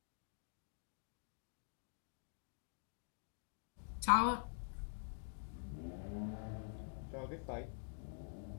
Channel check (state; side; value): silent; right; digital silence